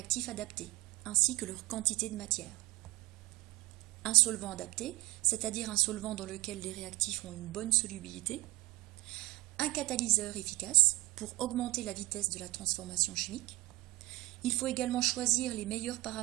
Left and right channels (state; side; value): quieter; left; 20.2 dB